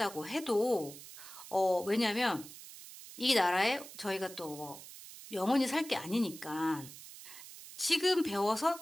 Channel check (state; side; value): noise; right; hiss, 15 dB below the sound